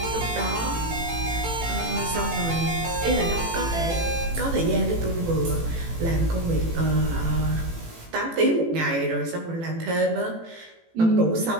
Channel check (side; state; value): left; late; 18 ms